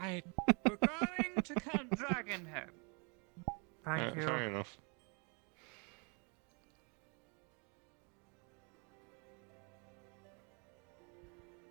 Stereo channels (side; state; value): left; quieter; 34.8 dB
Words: I We're going to Camp Dragonhead. thank you. Fair enough.